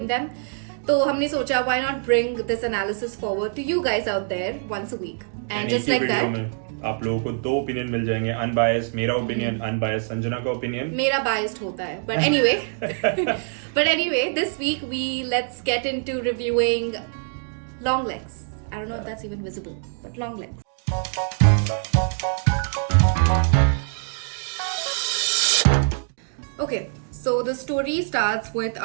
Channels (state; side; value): silent; left; digital silence